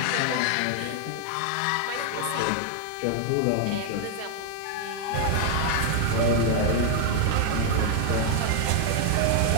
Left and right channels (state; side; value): different; both; correlation 0.00